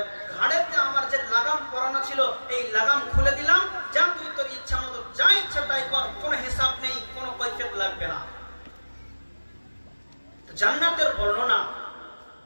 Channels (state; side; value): inverted; both; correlation -1.00